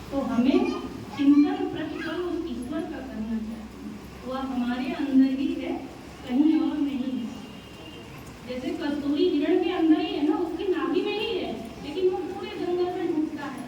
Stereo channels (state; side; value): identical; both; correlation 1.00